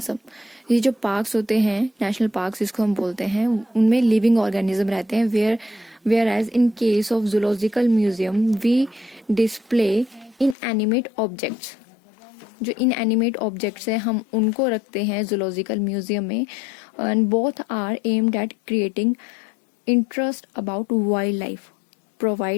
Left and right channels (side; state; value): right; drops out; at 10.6 s